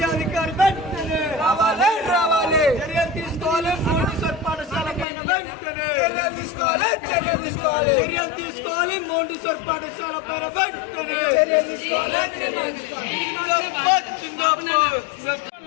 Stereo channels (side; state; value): right; drops out; at 5.1 s